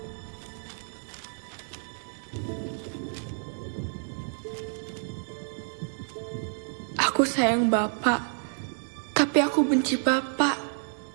Aku sayang Bapak, tapi aku benci Bapak.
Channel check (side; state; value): left; silent; 58 dB below the other